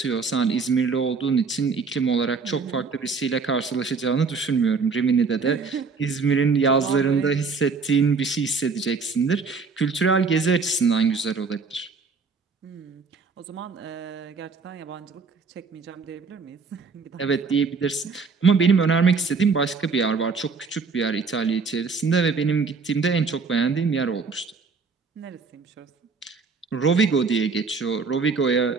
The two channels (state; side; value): quieter; left; 4.8 dB